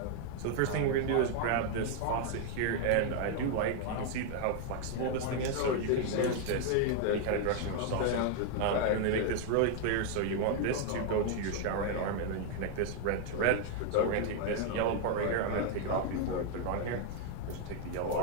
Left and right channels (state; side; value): different; both; correlation 0.00